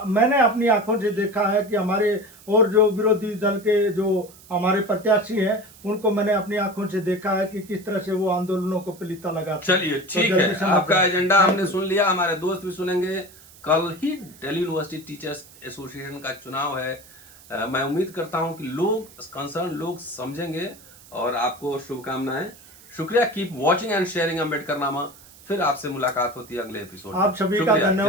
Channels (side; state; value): right; noise; hiss, 23 dB below the sound